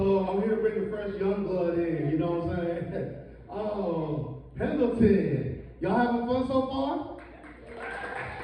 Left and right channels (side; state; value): both; identical; correlation 1.00